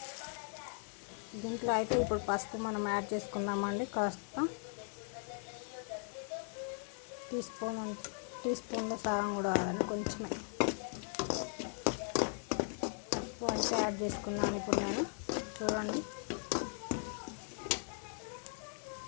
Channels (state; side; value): silent; right; 52 dB below the other